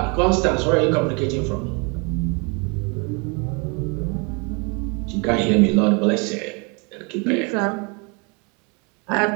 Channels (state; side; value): quieter; left; 32.5 dB